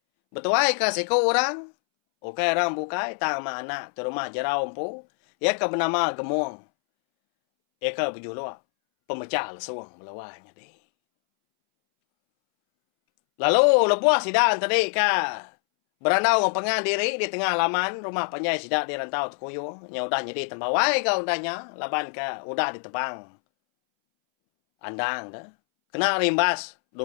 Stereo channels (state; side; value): silent; right; 62 dB below the other